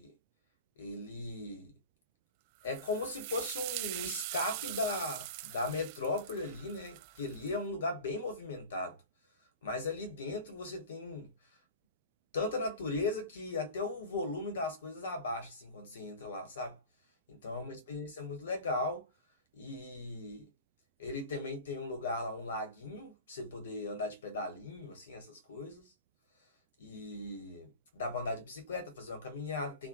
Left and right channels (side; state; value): both; inverted; correlation -0.34